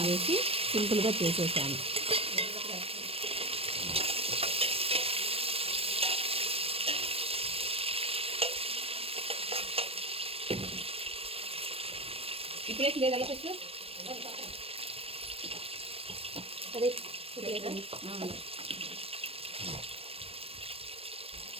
వేసి సింపుల్గా చేసేసాను. ఇప్పుడు వేసి లేదా ఫస్ట్ అదే ఇప్పుడు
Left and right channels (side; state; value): left; late; 0.28 ms